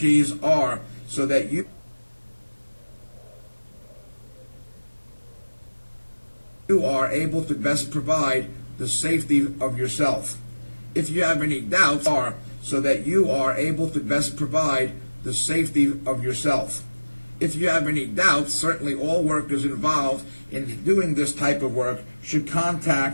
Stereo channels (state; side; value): inverted; both; correlation -1.00